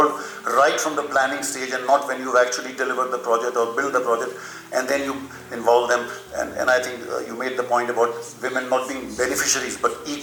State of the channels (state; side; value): identical; both; correlation 1.00